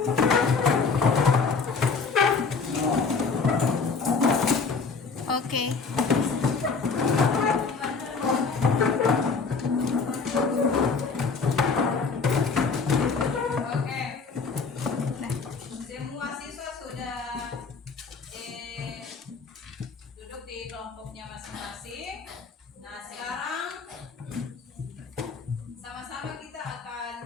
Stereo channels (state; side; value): quieter; right; 4.8 dB